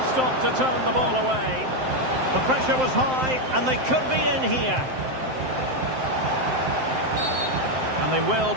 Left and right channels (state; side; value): late; left; 7.7 ms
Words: stop to turn the ball away. The pressure was high, and they could be in here. And they will